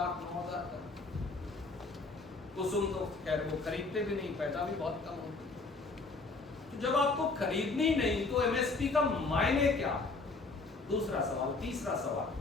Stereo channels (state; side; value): quieter; right; 3.7 dB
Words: टन। कुसुम तो खैर वो खरीदते भी नहीं, पैदा भी बहुत कम होती। तो जब आपको खरीदनी नहीं तो MSP का मायने क्या? दूसरा सवाल। तीसरा सवाल,